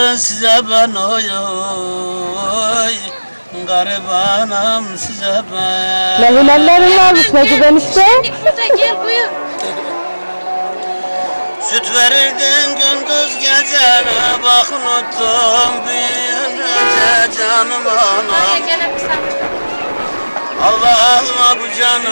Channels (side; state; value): both; inverted; correlation -1.00